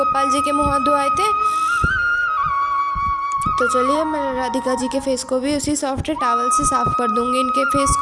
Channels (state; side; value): identical; both; correlation 1.00